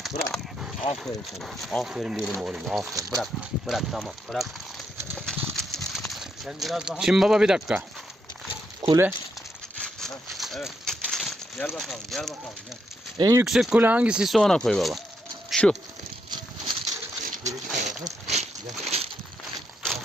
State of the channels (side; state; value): both; normal; correlation 0.79